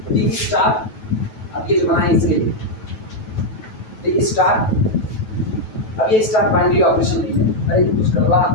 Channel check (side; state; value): right; late; 9.2 ms